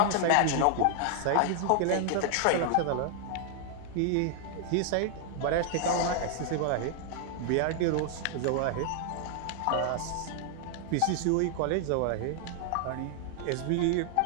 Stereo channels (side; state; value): both; different; correlation 0.00